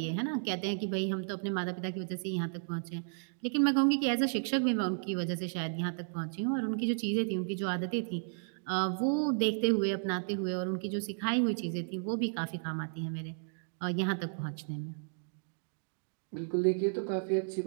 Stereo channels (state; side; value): silent; left; digital silence